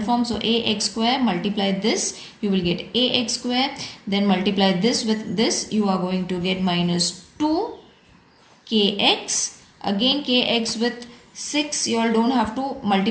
form. So, ax square multiply this. You will get ax square. Then multiply this with this. You are going to get minus 2 kx. Again, kx with 6. You all don't have to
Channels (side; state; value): both; identical; correlation 1.00